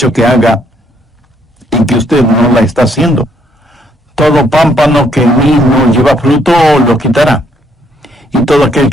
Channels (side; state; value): both; normal; correlation 0.70